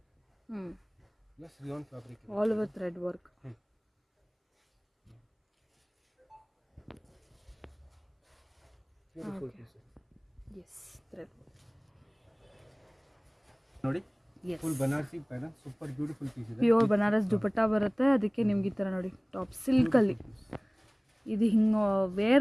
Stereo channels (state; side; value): identical; both; correlation 1.00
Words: Plus rayon fabric, all over thread work. Beautiful piece. Yes, thread ನೋಡಿ, full Banarasi pattern, super beautiful piece ಇದೆ. ಪ್ಯೂರ್ ಬನಾರಸ್ ದುಪಟ್ಟಾ ಬರುತ್ತೆ. ಅದಕ್ಕೆ ನಿಮ್ಗೆ ಈ ಥರ ನೋಡಿ ಟಾಪ್ ಸಿಲ್ಕಲ್ಲಿ ಇದು ಹಿಂಗೆ